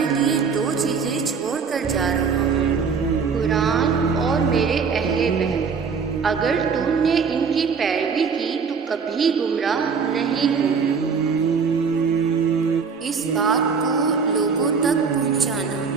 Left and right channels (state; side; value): quieter; left; 5.7 dB